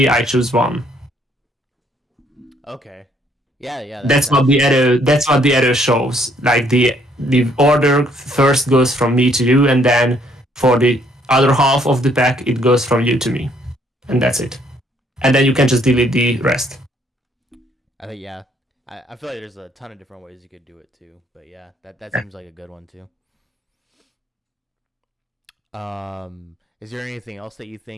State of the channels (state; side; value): normal; both; correlation 0.66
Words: I choose 1. Okay. Yeah. That's what the arrow shows. Like the order first goes from me to you, and then for the other half of the pack it goes from you to me, and that's it. And then you can just delete the rest. I think I feel like there's a ton of different ways you could do it too, but yeah, that seems like a good one too. Is there anything else that you